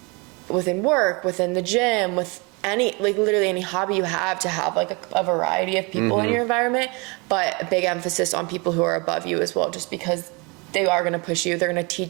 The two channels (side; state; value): left; quieter; 28.9 dB